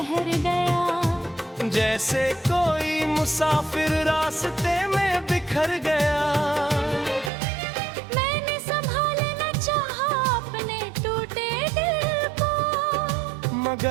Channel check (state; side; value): drops out; left; at 7.3 s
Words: गया, जैसे कोई मुसाफिर रास्ते में बिखर गया। मैंने संभालना चाहा अपने टूटे दिल को,